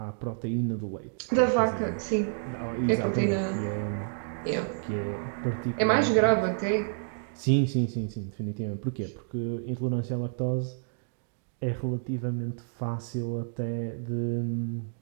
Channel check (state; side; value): silent; left; digital silence